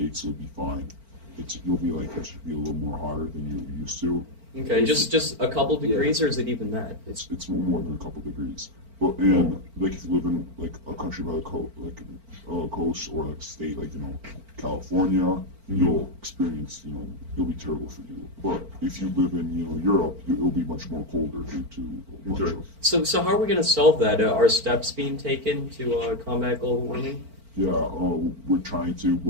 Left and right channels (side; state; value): left; late; 4.4 ms